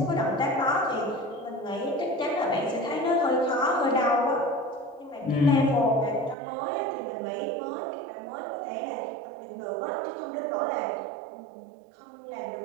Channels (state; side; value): drops out; left; at 6.4 s